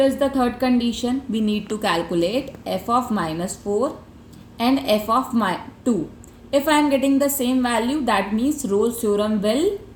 the third condition? We need to calculate f of minus 4 and f of 2. If I am getting the same value, that means Rolle's theorem will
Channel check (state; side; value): identical; both; correlation 1.00